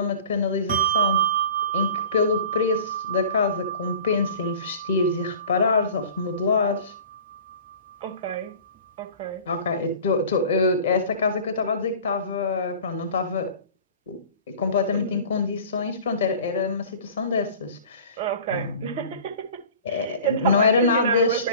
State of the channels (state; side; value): inverted; both; correlation -0.43